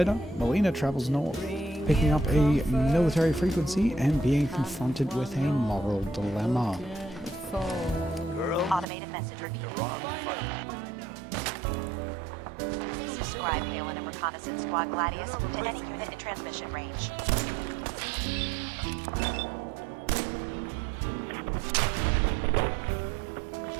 Melina travels north, picking up a military frequency and being confronted with a moral dilemma. Automated message. Subscribe Halen and Reconnaissance Squad Gladius to any unit in transmission range.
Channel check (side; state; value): left; drops out; at 8.8 s